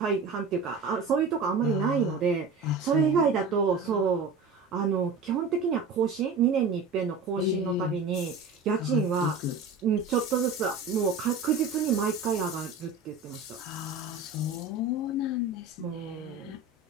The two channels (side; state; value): left; quieter; 4.0 dB